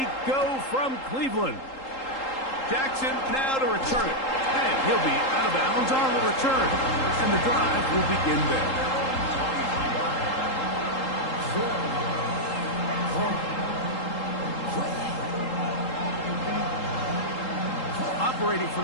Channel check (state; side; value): late; right; 3.8 ms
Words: go from Cleveland. Jackson now to return it. And he'll be out of bounds on the return. And the drive will begin there. Operating